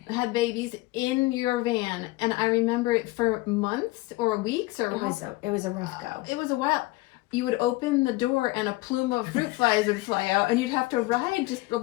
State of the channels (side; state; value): right; quieter; 20.5 dB